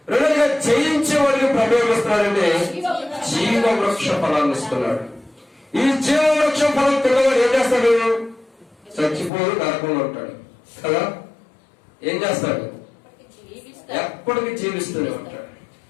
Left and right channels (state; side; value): drops out; right; at 9.3 s